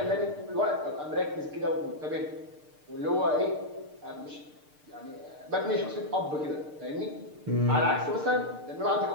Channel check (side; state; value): left; late; 6.6 ms